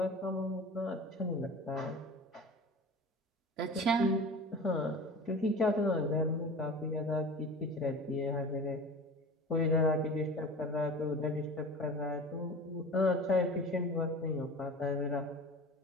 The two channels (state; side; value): normal; both; correlation 0.36